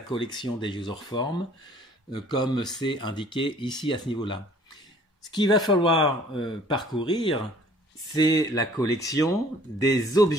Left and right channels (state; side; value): normal; both; correlation 0.54